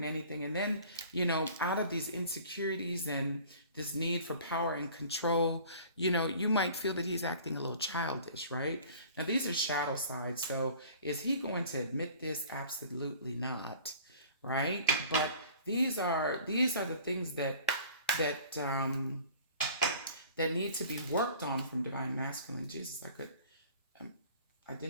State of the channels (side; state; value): both; inverted; correlation -0.48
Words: anything. And then, out of these insecurities and this need for power and control, you might feel that he's acting a little childish, right? Now, these are shadow sides. So is he going to admit this? Absolutely not, right? But these are the things that need to be worked on from divine masculine. Jesus, I